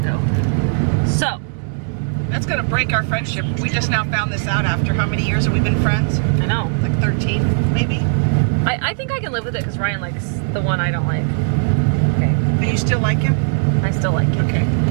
So That's gonna break our friendship. We just now found this out after how many years have we been friends? I know. Like 13, maybe? I think I can live with it because Ryan likes the one I don't like. Okay. And you still like him? I still like it. Okay.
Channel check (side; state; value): left; silent; digital silence